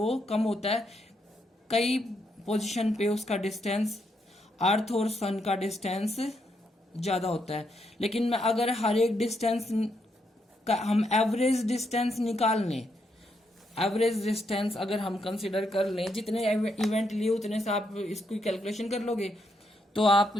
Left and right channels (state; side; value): normal; both; correlation 0.78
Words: कम होता है, कई पोजीशन पे उसका डिस्टेंस अर्थ और सन का डिस्टेंस ज्यादा होता है। लेकिन मैं अगर हर एक डिस्टेंस का हम एवरेज डिस्टेंस निकाल लें, एवरेज डिस्टेंस अगर हम कंसिडर कर लें, जितने इवेंट लिए उतने से आप इसकी कैलकुलेशन कर लोगे, तो आप